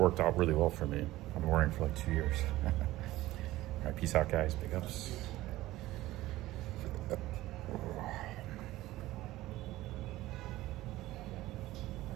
out really well for me. I've been wearing it for like 2 years. All right, peace out, guys. Big ups.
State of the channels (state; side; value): quieter; left; 16.8 dB